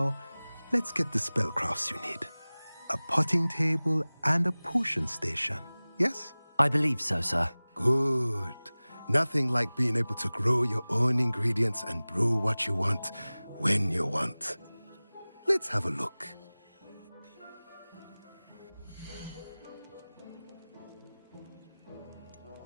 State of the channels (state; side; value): inverted; both; correlation -0.99